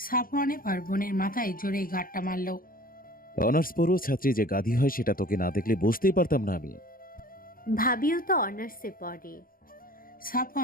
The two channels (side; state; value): right; late; 0.41 ms